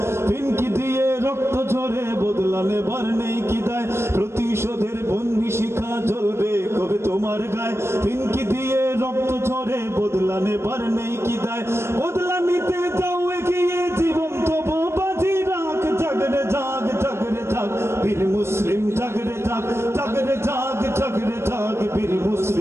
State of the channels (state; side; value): late; left; 0.13 ms